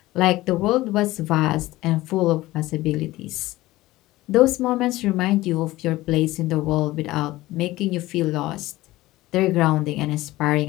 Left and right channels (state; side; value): quieter; right; 17.8 dB